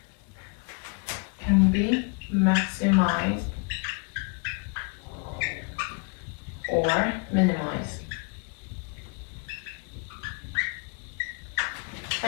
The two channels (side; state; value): right; quieter; 34.3 dB